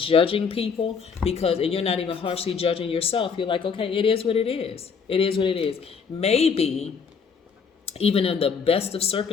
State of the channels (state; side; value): quieter; right; 5.9 dB